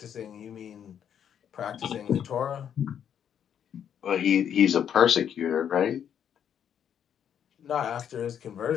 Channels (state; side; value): quieter; right; 8.8 dB